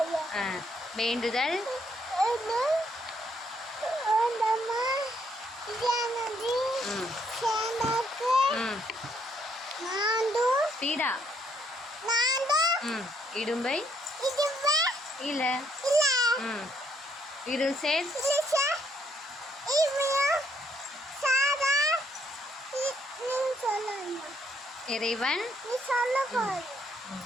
வேண்டுதல் பீடா இடும்பை இல்ல இருள் சேர் இறைவன்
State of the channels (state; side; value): normal; both; correlation 0.70